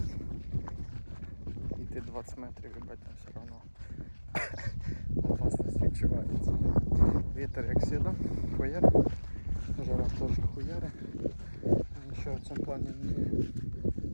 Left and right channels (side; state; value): both; inverted; correlation -1.00